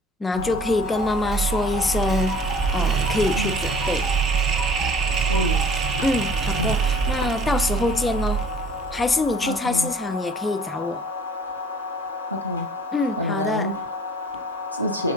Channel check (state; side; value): normal; both; correlation 0.51